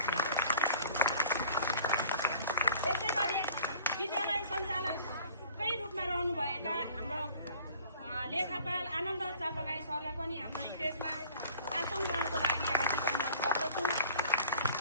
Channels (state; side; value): inverted; both; correlation -0.51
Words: यसैगरी विद्यालय सञ्चालकै रूपमा रहनुभएका हाम्रो लेखापाल आनन्द चापागाई सरलाई पनि हाम्रो स्टेजमा आसन ग्रहणको लागि हार्दिक अनुरोध गर्दछु।